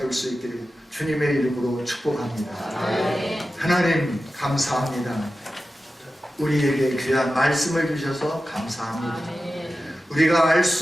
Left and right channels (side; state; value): both; normal; correlation 0.93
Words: 수 있기를 주님의 이름으로 축복합니다. 하나님 감사합니다. 우리에게 귀한 말씀을 주셔서 감사합니다. 우리가 알